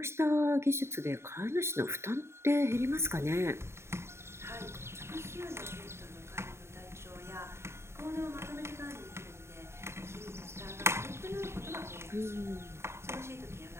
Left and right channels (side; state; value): left; late; 0.13 ms